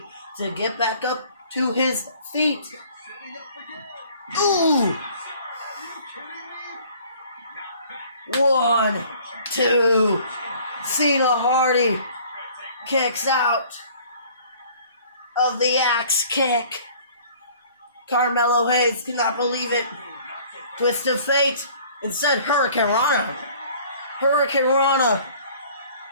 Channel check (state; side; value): inverted; both; correlation -0.53